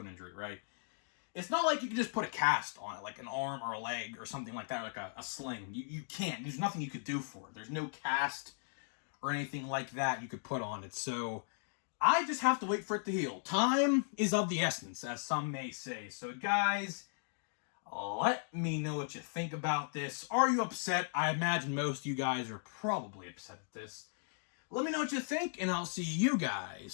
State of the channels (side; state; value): right; silent; digital silence